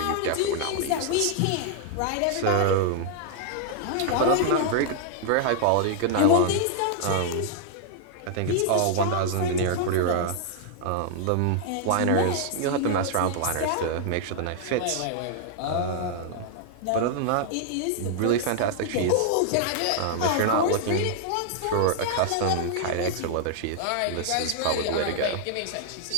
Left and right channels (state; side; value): different; both; correlation -0.01